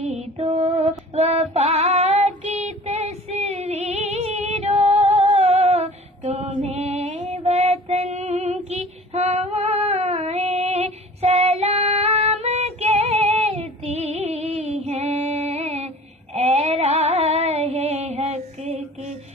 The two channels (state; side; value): normal; both; correlation 0.44